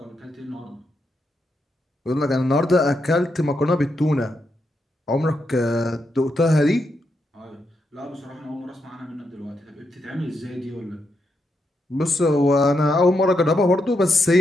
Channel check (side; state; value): both; normal; correlation 0.82